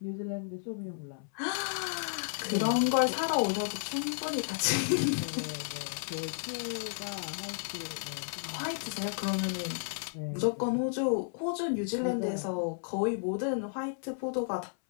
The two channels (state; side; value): silent; right; 56 dB below the other